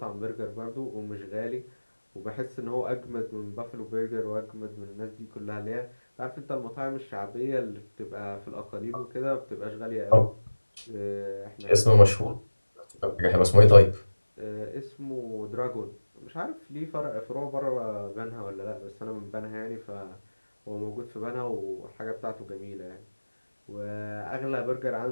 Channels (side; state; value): both; inverted; correlation -1.00